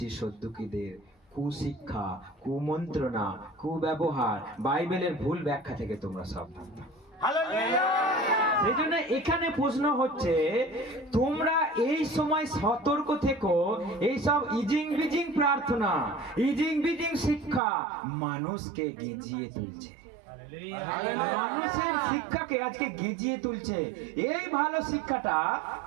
সদ্দুকীদের কুশিক্ষা, কুমন্ত্রণা, কুব্যবহার, বাইবেলের ভুল ব্যাখ্যা থেকে তোমরা সাবধান থাকো। সেই জন্য এখানে প্রশ্ন হচ্ছে, তোমরা এই সময় সতর্ক থেকো। এইসব ইজিং বিজিং প্রার্থনা, ইজিং বিজিং শিক্ষা মানুষকে গেঁজিয়ে তুলছে, মানুষের শিক্ষাকে আজকে গেঁজিয়ে তুলছে। এই ভালো শিক্ষাটা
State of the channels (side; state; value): left; drops out; at 17.6 s